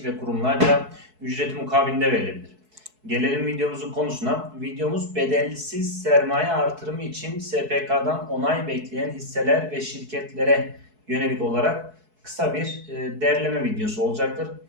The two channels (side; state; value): left; late; 4.6 ms